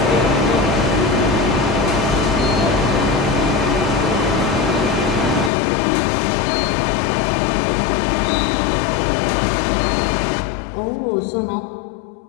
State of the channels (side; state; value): right; drops out; at 5.5 s